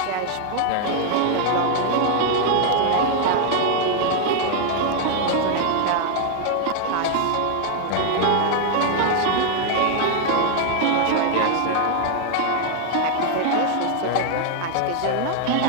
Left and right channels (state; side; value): different; both; correlation 0.00